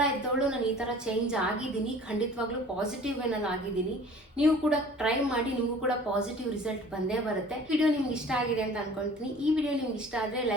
ಇದ್ದವಳು ನಾನು ಈ ಥರ ಚೇಂಜ್ ಆಗಿದ್ದೀನಿ. ಖಂಡಿತವಾಗ್ಲೂ ಪಾಸಿಟಿವ್ ವೇನಲ್ಲಿ ಆಗಿದ್ದೀನಿ. ನೀವು ಕೂಡ ಟ್ರೈ ಮಾಡಿ, ನಿಮಗೂ ಕೂಡ ಪಾಸಿಟಿವ್ ರಿಸಲ್ಟ್ ಬಂದೇ ಬರುತ್ತೆ. ವಿಡಿಯೋ ನಿಮ್ಗೆ ಇಷ್ಟ ಆಗಿದೆ ಅಂತ ಅನ್ಕೊಳ್ತೀನಿ. ಈ ವಿಡಿಯೋ ನಿಮ್ಗೆ ಇಷ್ಟ ಆದರೆ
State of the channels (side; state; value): both; normal; correlation 0.47